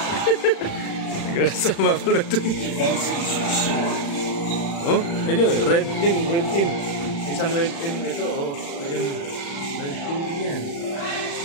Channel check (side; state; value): right; late; 36 ms